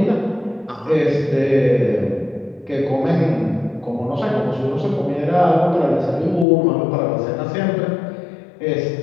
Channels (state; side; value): drops out; right; at 6.5 s